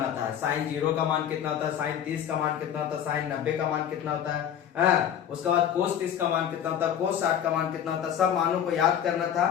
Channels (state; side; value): quieter; right; 9.4 dB